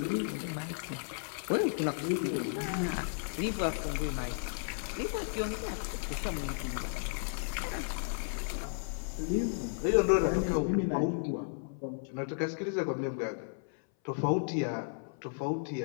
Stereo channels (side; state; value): right; silent; 55 dB below the other